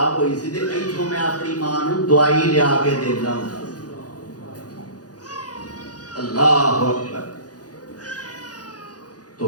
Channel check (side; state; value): right; late; 0.68 ms